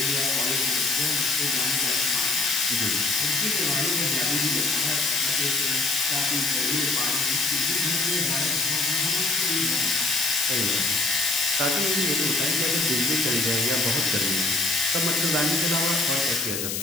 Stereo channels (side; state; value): left; noise; hiss, 3 dB below the sound